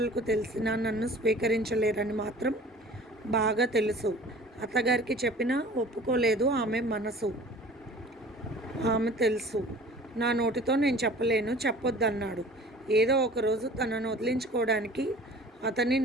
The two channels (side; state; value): both; normal; correlation 0.45